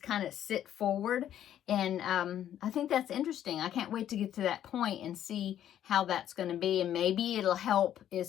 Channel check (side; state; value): right; quieter; 11.0 dB